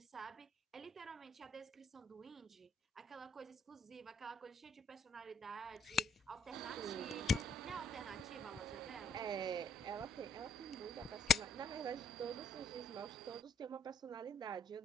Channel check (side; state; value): both; normal; correlation 0.65